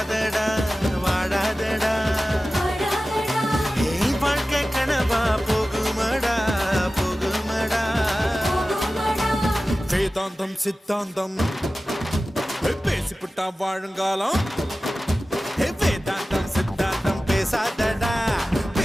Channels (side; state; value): both; normal; correlation 0.96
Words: வாழாதடா ஏய் வாழ்க்கை கனவா போகுமடா போகுமடா வேதாந்தம் சித்தாந்தம் பேசிவிட்டா வாழுங்காலம் வேதாந்தம் சித்தாந்தம் பேசாதடா